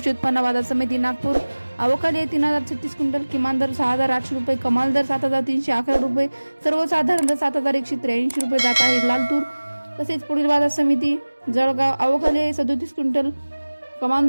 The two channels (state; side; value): inverted; both; correlation -1.00